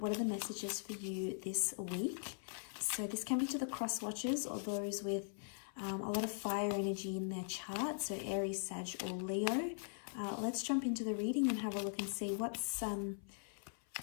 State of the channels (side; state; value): right; silent; 51 dB below the other